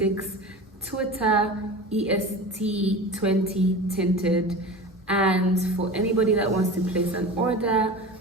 Twitter, EST20 Tinted. And for anybody that wants to place an order,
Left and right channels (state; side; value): normal; both; correlation 0.32